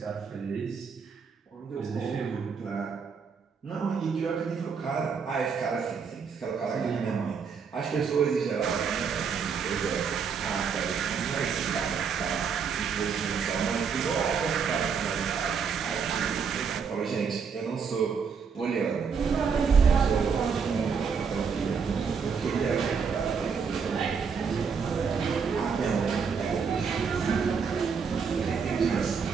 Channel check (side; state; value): left; quieter; 6.1 dB